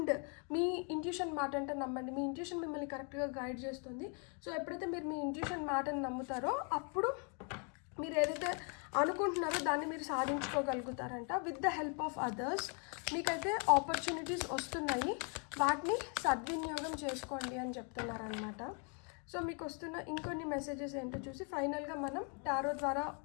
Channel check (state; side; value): quieter; right; 38.5 dB